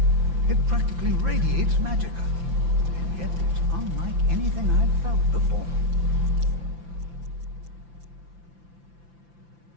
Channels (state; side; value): late; left; 5.9 ms